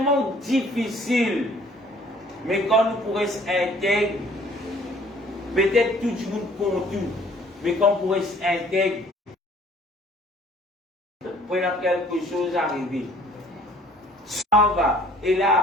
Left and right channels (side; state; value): both; normal; correlation 0.55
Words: difficile, mais quand nous pourrons intégrer, peut-être tout le monde pour tout, mais quand on pourrait intégrer, pour quelque chose arriver. Ça va, et